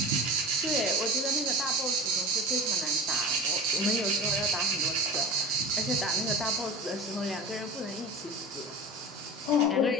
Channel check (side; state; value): both; normal; correlation 0.33